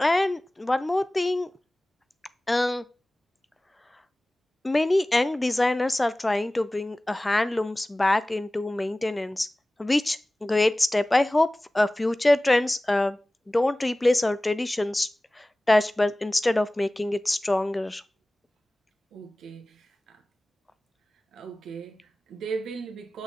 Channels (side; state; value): both; normal; correlation 0.98